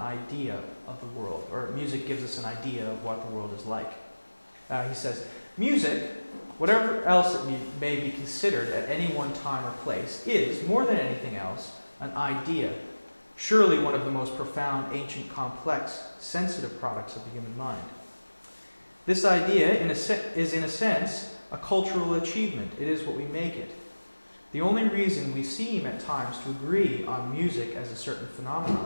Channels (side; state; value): both; inverted; correlation -1.00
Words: of the world, or music gives us an idea of what the world is like. He says, music, whatever else it may be considered at any one time or place, is, more than anything else, an idea, surely one of the most profound, ancient, complex, sensitive products of the human mind. This idea is, in a sense, a cultural achievement. It is what we make it. The only reason we seem at times to agree on music as a certain